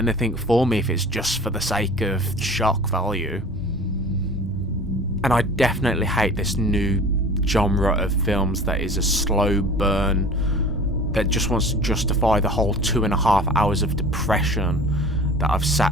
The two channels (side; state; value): both; normal; correlation 0.41